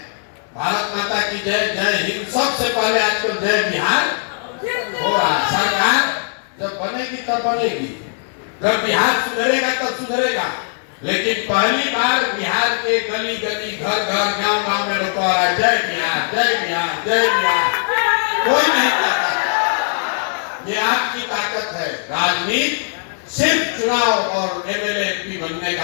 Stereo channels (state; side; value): silent; right; digital silence